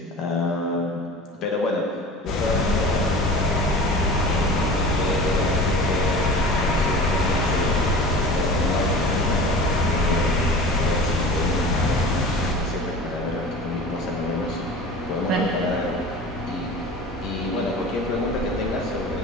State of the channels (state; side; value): normal; both; correlation 0.37